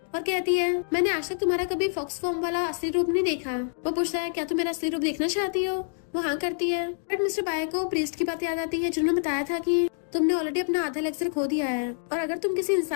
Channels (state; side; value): silent; right; digital silence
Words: और कहती है मैंने आज तक तुम्हारा कभी फॉक्स फॉर्म वाला असली रूप नहीं देखा। वो पूछता है क्या तुम मेरा असली रूप देखना चाहती हो? वो हाँ करती है बट मिस्टर बाय को प्रीस्ट की बात याद आती है जिन्होंने बताया था कि तुमने ऑलरेडी अपना आधा लेक्चर खो दिया है और अगर तुम किसी